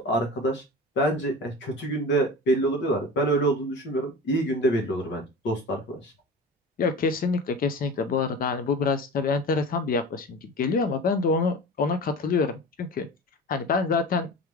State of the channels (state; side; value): normal; both; correlation 0.34